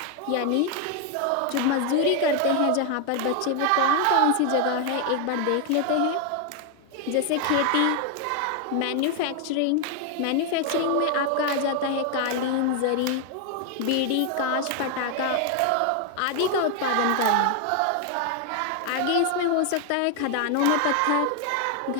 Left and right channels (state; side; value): different; both; correlation 0.01